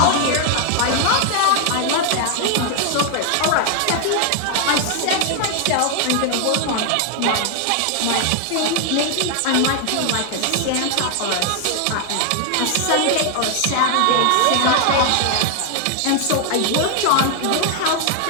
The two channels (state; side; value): different; both; correlation 0.00